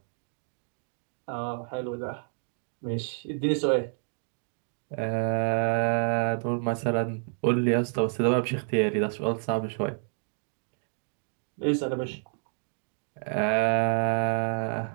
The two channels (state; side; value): silent; left; digital silence